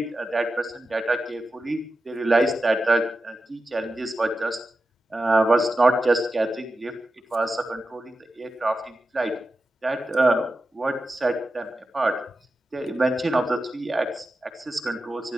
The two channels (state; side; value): normal; both; correlation 0.91